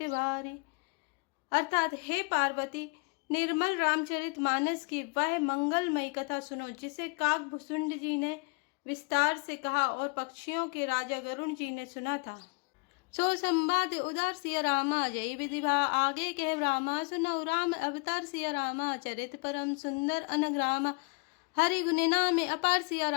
भारी। अर्थात हे पार्वती, निर्मल रामचरित मानस की वह मंगलमयी कथा सुनो जिसे काक भुसुंड जी ने विस्तार से कहा और पक्षियों के राजा गरुण जी ने सुना था। सो संवाद उदार सिया रामा, जय विधिभा आगे कह रामा, सुनौ राम अवतार सिया रामा, चरित परम सुंदर अनग्रामा, हरि गुण नाम अपार सिया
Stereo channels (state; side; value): quieter; right; 31.0 dB